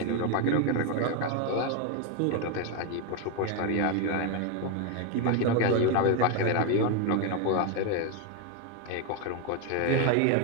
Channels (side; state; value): both; different; correlation 0.02